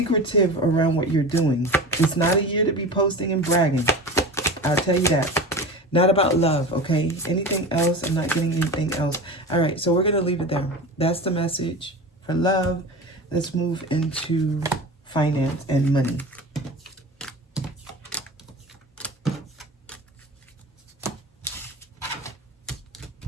around what you're doing. It's not a year to be posting and bragging. I'll tell you that. Not about love, okay? Anything else? I'm not getting anything else. All right, so we're going to leave it there. That's the message For love, let's move into finance and money.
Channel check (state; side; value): normal; both; correlation 0.31